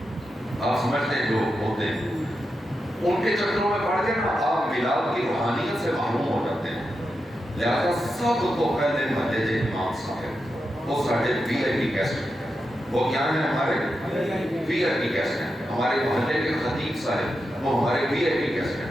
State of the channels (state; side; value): normal; both; correlation 0.88